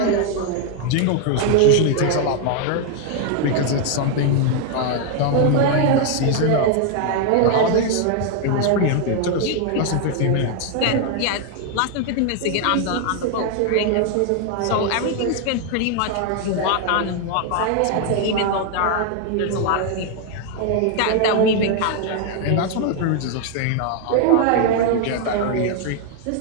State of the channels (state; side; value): different; both; correlation 0.00